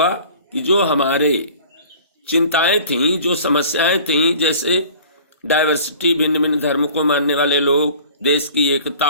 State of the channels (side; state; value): both; inverted; correlation -0.46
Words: कि जो हमारे चिंताएं थीं, जो समस्याएं थीं, जैसे डाइवर्सिटी, भिन्न भिन्न धर्म को मानने वाले लोग, देश की